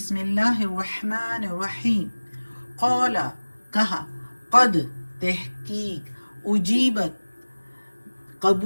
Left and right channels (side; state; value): both; inverted; correlation -1.00